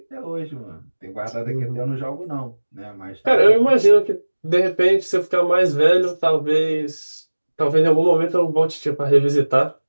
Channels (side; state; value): both; inverted; correlation -1.00